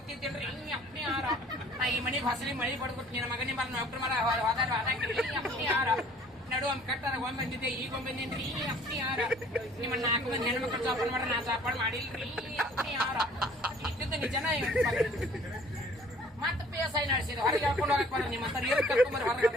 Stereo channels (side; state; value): both; normal; correlation 0.54